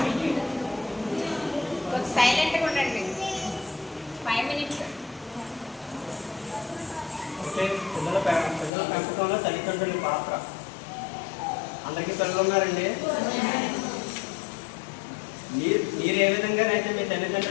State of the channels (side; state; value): right; drops out; at 8.7 s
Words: కొంచెం సైలెంట్గా ఉండండి. 5 minutes. పిల్లల పెంపకంలో తల్లిదండ్రుల పాత్ర. అందరికీ పిల్లలు ఉన్నారండి? మీరు ఏ విధంగానైతే మీ